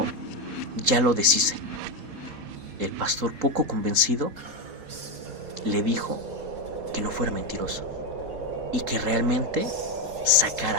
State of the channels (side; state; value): left; late; 4.2 ms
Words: ya lo deshice. El pastor, poco convencido, le dijo que no fuera mentiroso y que realmente